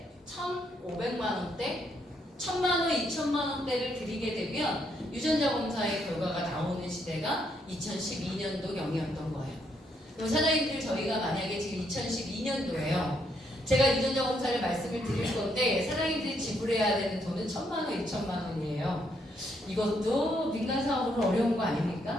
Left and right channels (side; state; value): both; normal; correlation 0.74